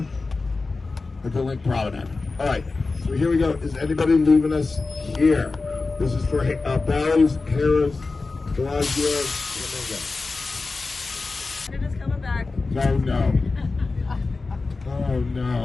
at the Link Promenade. All right, so here we go. Is anybody leaving us here? This is for Bally's, Harris, Bellagio, Canada's coming back. Oh no. Oh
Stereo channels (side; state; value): right; quieter; 3.8 dB